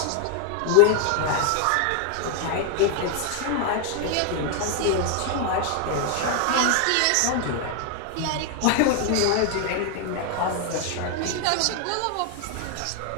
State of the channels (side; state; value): both; different; correlation 0.00